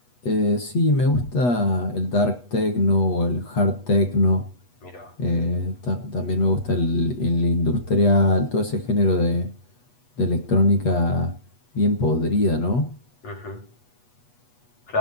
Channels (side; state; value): right; late; 8.2 ms